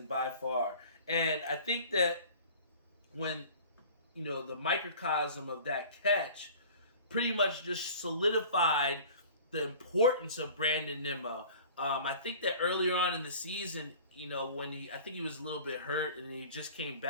by far. And I think that when, the microcosm of that catch pretty much just solidified the importance of Brandon Nimmo. I think that earlier on in the season, when I think he was a little bit hurt and he just came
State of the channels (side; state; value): both; inverted; correlation -0.44